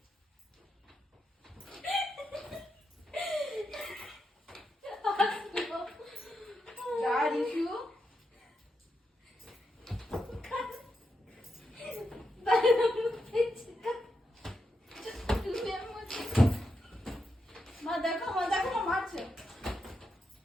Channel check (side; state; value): both; normal; correlation 0.85